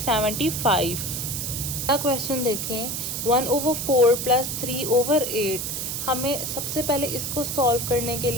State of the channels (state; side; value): noise; right; hiss, 3 dB below the sound